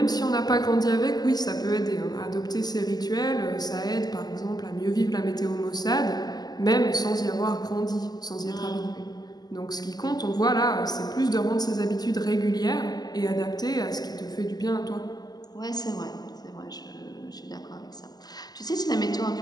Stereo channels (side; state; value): right; late; 0.20 ms